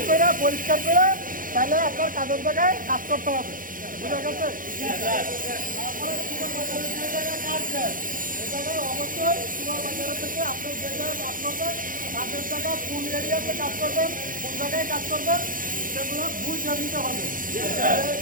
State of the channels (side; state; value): left; late; 0.40 ms